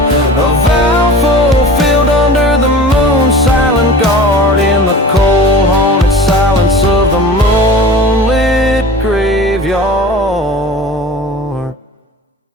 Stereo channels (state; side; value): normal; both; correlation 0.39